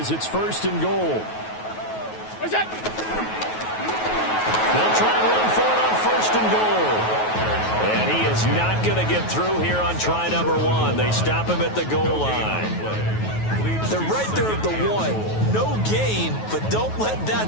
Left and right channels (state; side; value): late; right; 9.3 ms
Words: it's 1st and goal. What's that? They'll try and run for it on 1st and goal. And he is not going to get through here on try number 1. They stop him at the goal line. They're right there at the 1. No gain, but don't let